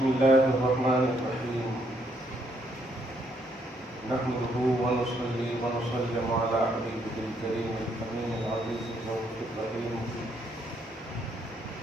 الله الرحمن الرحيم نحمده ونصلي ونسلم على حبيبه الكريم الأمين العزيز الرؤوف الرحيم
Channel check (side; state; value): both; normal; correlation 0.72